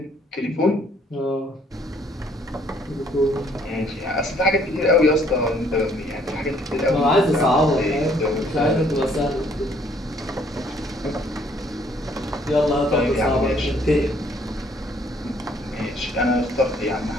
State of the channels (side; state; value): both; normal; correlation 0.63